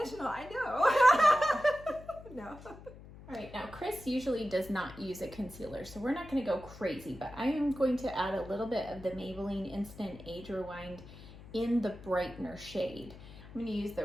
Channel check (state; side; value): noise; left; hum, 17 dB below the sound